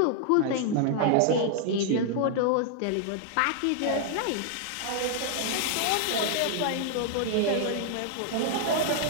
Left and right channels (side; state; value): both; different; correlation -0.01